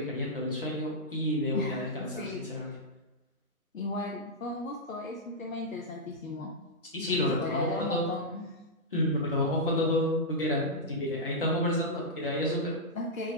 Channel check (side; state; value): both; normal; correlation -0.08